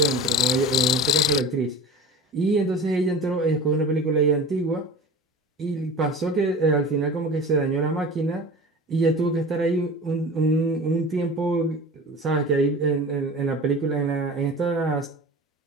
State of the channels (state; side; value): normal; both; correlation 0.36